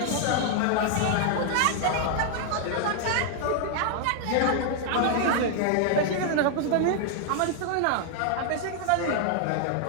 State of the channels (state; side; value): different; both; correlation 0.00